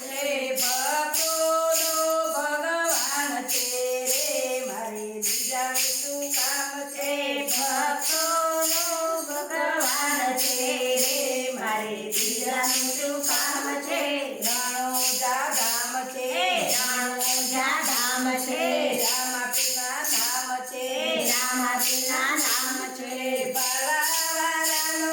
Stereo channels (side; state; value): both; identical; correlation 1.00